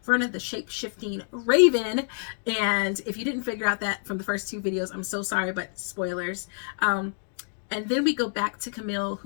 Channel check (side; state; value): right; silent; digital silence